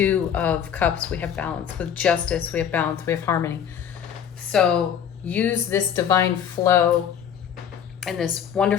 of Cups, we have balance. With Justice, we have balance. We have harmony. So use this divine flow and this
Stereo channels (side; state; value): right; quieter; 8.6 dB